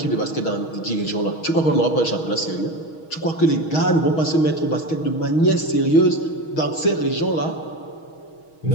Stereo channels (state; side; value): late; right; 6.3 ms